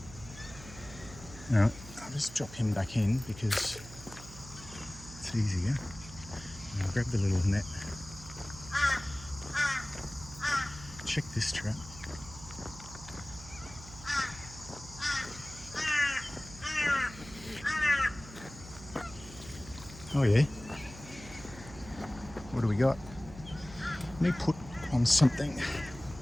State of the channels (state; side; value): noise; right; hum, 15 dB below the sound